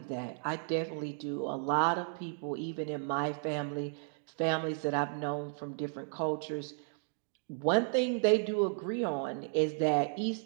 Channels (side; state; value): left; silent; digital silence